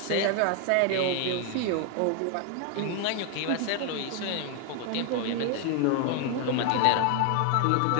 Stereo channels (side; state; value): both; different; correlation 0.00